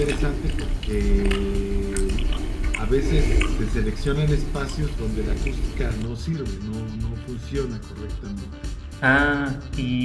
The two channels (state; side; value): identical; both; correlation 1.00